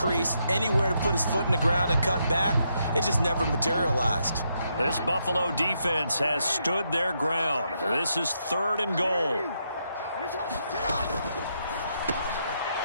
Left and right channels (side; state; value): both; inverted; correlation -0.79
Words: anywhere to put his foot in the ground and cut back. It just never materialized. This Buffalo defense has stood their ground. This is 3rd and goal.